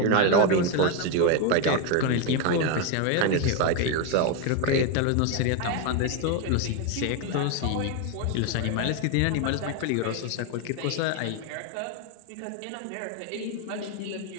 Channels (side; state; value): both; different; correlation 0.02